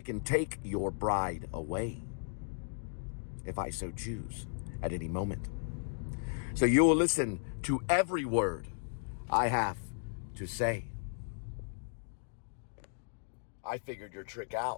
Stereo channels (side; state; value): right; silent; digital silence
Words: can take your bride away. if I so choose, at any moment. So you will listen to every word I have to say. I figured your trick